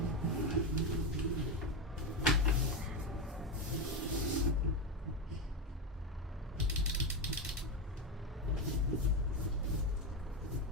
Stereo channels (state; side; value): normal; both; correlation 0.12